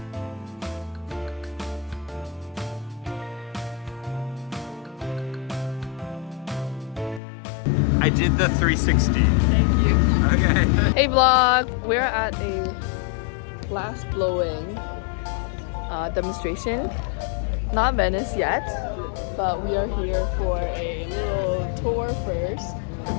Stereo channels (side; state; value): right; drops out; at 7.2 s